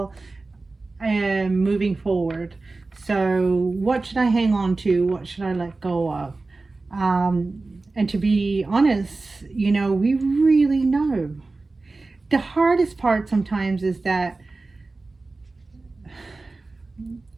and moving forward. So what should I hang on to? What should I let go of? And to be honest, we really know. The hardest part sometimes is that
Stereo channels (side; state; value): left; quieter; 3.5 dB